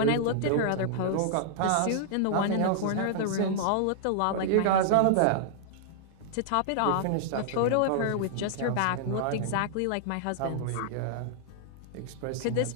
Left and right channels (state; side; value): different; both; correlation -0.01